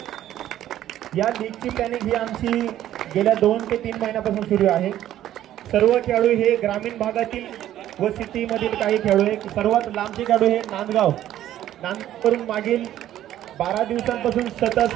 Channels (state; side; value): quieter; left; 12.5 dB